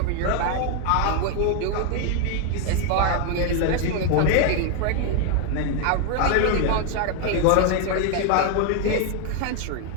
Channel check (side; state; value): both; different; correlation 0.00